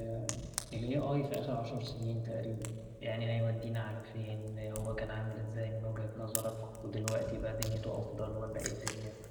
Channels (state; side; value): identical; both; correlation 1.00